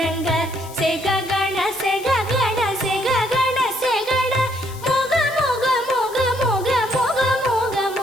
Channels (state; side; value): noise; left; hiss, 18 dB below the sound